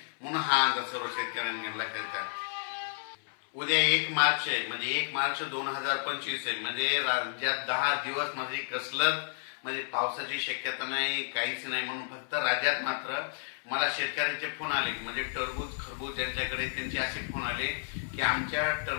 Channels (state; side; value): silent; right; 57 dB below the other